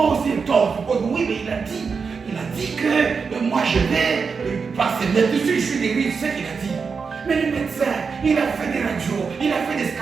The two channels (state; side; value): quieter; left; 5.4 dB